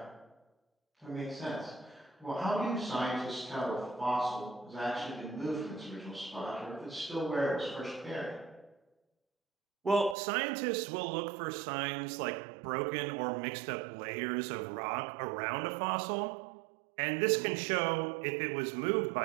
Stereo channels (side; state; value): left; drops out; at 10.2 s